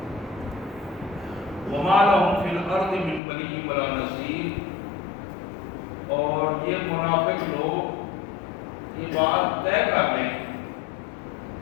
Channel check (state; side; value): drops out; right; at 3.2 s